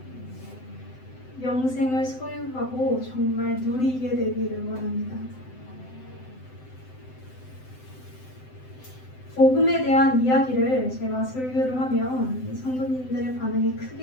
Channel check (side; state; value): right; late; 7.8 ms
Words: 영생을 소유하고 정말 누리게 되기를 원합니다. 복음에 대한 이야기를 제가 설교를 하면 성도님들의 반응이